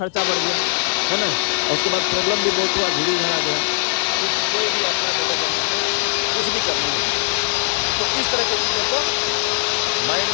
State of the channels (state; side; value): silent; right; 65 dB below the other